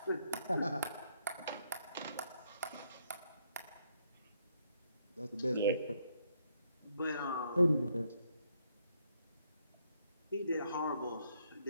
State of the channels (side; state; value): both; inverted; correlation -0.73